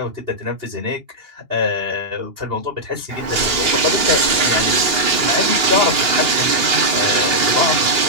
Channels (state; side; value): late; left; 2.8 ms